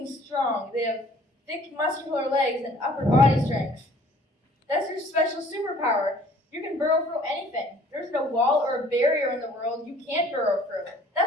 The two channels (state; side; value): normal; both; correlation 0.55